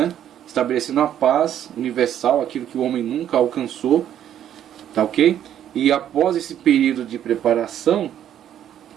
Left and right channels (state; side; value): quieter; left; 10.5 dB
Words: Estabelecendo a paz universal, aquilo que o homem nunca alcançou, tá ok? E após esse período de preparação,